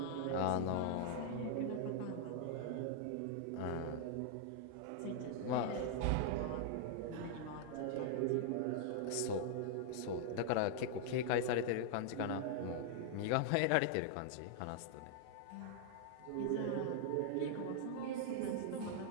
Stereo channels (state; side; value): different; both; correlation -0.01